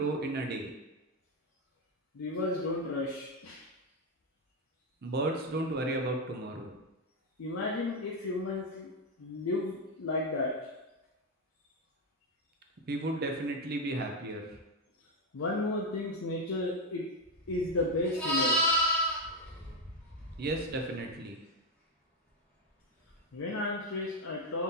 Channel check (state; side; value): normal; both; correlation 0.07